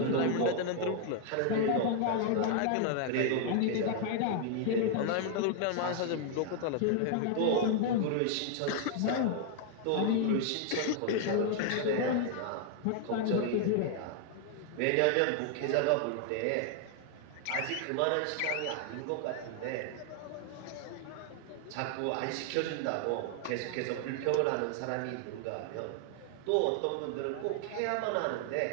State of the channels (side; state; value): both; different; correlation 0.00